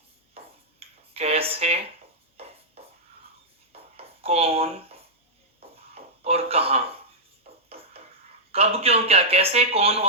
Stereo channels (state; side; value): normal; both; correlation -0.09